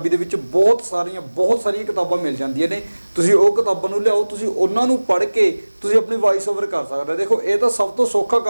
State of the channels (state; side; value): inverted; both; correlation -1.00